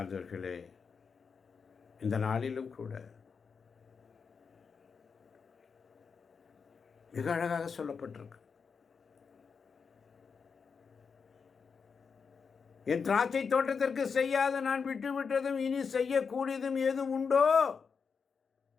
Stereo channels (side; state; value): right; quieter; 5.7 dB